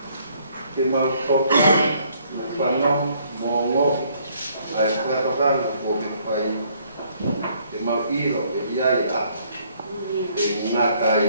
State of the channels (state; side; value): inverted; both; correlation -0.65